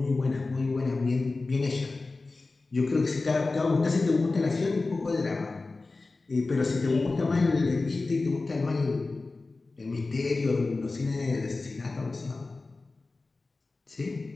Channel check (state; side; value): quieter; right; 3.6 dB